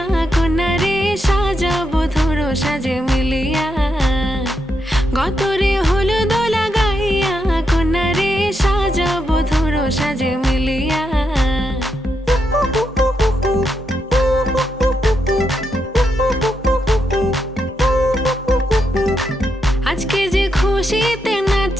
কন্যারে সাজাবো ধরো সাজে মিলিয়া গতরে হলুদ লাগাইয়া কন্যারে সাজাবো ধরো সাজে মিলিয়া আজকে যে খুশিতে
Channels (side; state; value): both; normal; correlation 0.82